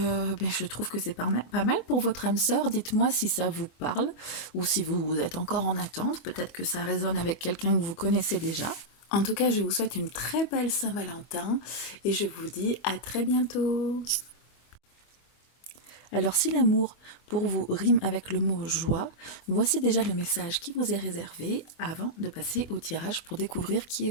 trouve que c'est pas mal pour votre âme sœur. Dites-moi si ça vous parle ou si vous êtes encore en attente. Peut-être que ça résonne avec quelqu'un que vous connaissez déjà. En tout cas, je vous souhaite une très belle Saint-Valentin et je vous dis à très bientôt. Alors si l'amour pour vous rime avec le mot joie, voici déjà le message qui vous est réservé avant de passer au tirage pour découvrir qui est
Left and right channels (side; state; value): right; late; 24 ms